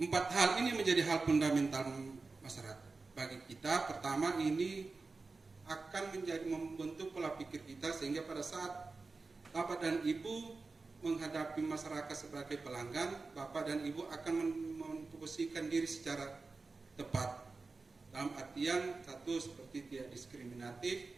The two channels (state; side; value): quieter; left; 3.9 dB